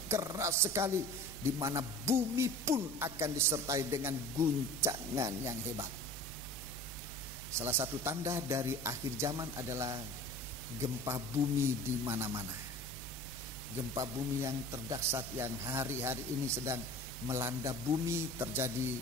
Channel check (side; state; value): both; normal; correlation 0.40